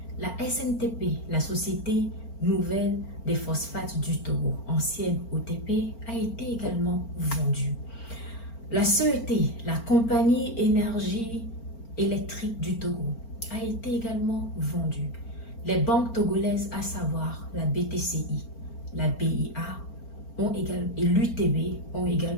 La SNTP, la Société Nouvelle des Phosphates du Togo, ancienne OTP, a été également vendue. La CET, la Compagnie Énergie Électrique du Togo, a été également vendue. Les banques togolaises, à savoir la BTCI, la BIA et l'UTB, ont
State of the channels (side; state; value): right; late; 4.4 ms